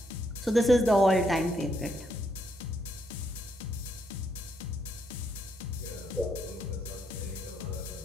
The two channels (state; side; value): normal; both; correlation 0.76